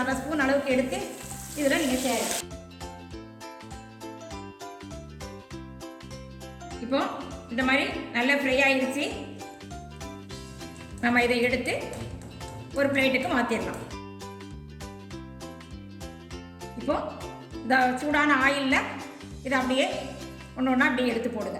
ஸ்பூன் அளவுக்கு எடுத்து இதில் நீங்கள் சேருங்க. இப்போ இந்த மாதிரி நல்லா ஃப்ரை ஆகிடுச்சு. நம்ம இதை எடுத்து ஒரு பிளேட்டுக்கு மாற்றிடலாம். இப்போ இந்த சூடான ஆயிலில் இதை அப்படியே ஒன்று ஒன்றா அப்படியே எடுத்து போடுங்க.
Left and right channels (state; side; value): identical; both; correlation 1.00